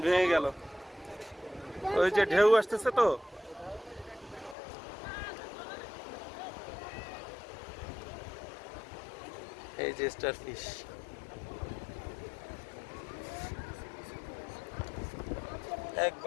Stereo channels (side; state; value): right; drops out; at 4.5 s